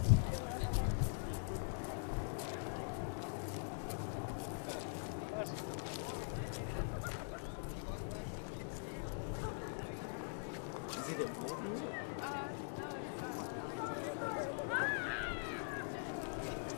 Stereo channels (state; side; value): silent; right; digital silence